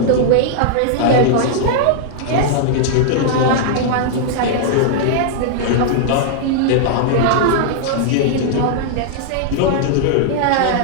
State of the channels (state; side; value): different; both; correlation -0.01